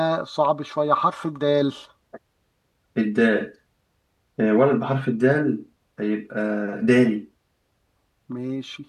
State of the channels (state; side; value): identical; both; correlation 1.00